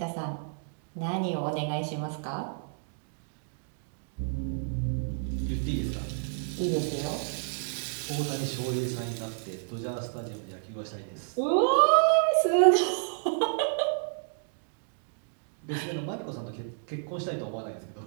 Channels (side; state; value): left; silent; digital silence